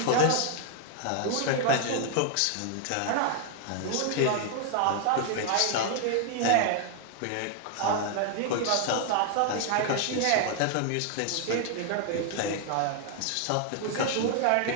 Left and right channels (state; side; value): different; both; correlation 0.00